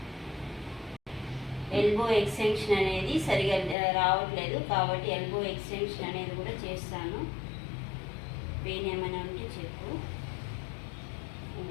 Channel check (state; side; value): drops out; right; at 3.8 s